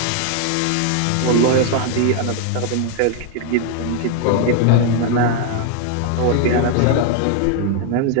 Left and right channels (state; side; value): different; both; correlation 0.00